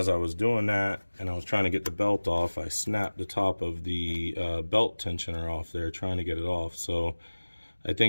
I was doing that and I was trying to get the belt off, I snapped the top of the belt tensioner off there trying to get it off. So I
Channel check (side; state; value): both; inverted; correlation -1.00